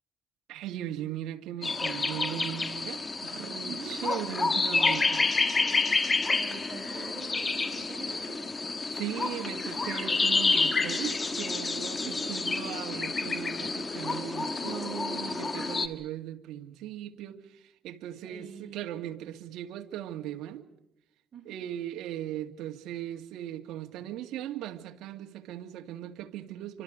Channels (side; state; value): both; normal; correlation 0.81